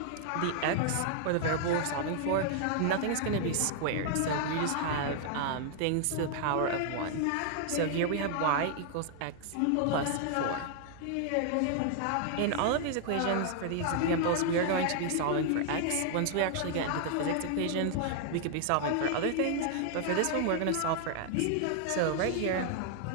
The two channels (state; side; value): different; both; correlation 0.00